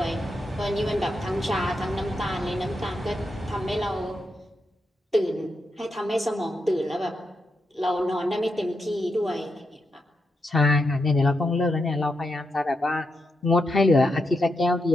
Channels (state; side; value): normal; both; correlation 0.84